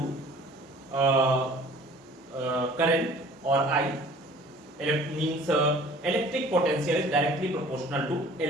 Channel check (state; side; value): normal; both; correlation 0.49